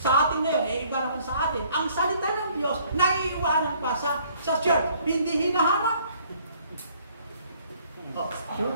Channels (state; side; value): inverted; both; correlation -0.61